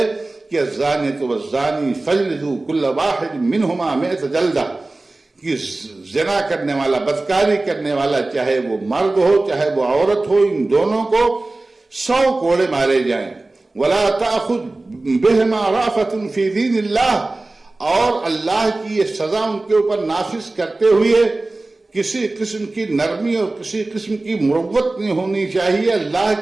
کہ الزانیۃ والزانی فاجلدوا کل واحد منہما 100 جلدہ، کہ زنا کرنے والا، بدکاری کرنے والا، چاہے وہ مرد ہو چاہے وہ عورت ہو، ان دونوں کو 100 کوڑے مارے جائیں. ولا تأخذ بہما رأفۃ فی دین اللہ، اور اللہ کی یہ سزا ان کے اوپر نافذ کرتے ہوئے کسی قسم کی نرمی اور کسی قسم کی مروت نہیں ہونی چاہیے. اللہ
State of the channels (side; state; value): left; quieter; 3.0 dB